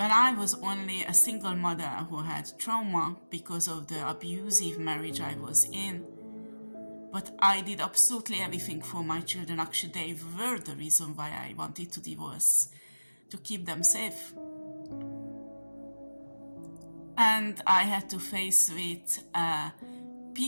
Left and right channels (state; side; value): inverted; both; correlation -1.00